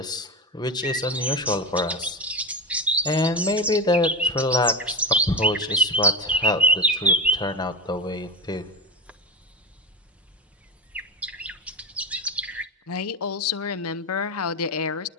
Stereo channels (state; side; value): normal; both; correlation 0.20